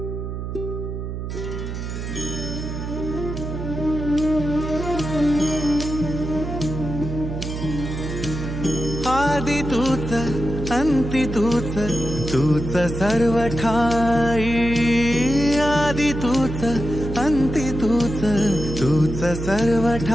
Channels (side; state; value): right; noise; hum, 6 dB below the sound